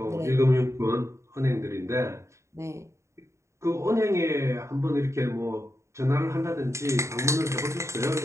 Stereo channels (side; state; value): left; late; 0.14 ms